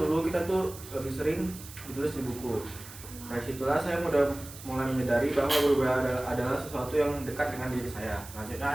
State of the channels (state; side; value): noise; right; hiss, 15 dB below the sound